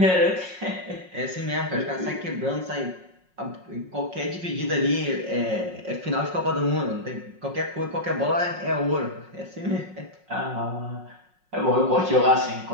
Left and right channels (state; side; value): late; left; 5.5 ms